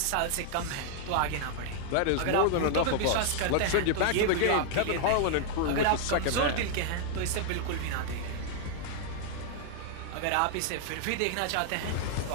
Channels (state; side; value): different; both; correlation -0.01